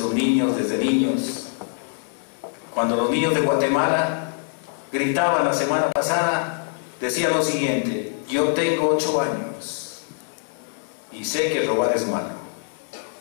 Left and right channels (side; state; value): right; silent; digital silence